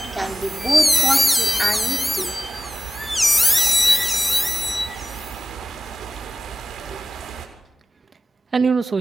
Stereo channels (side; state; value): both; normal; correlation 0.96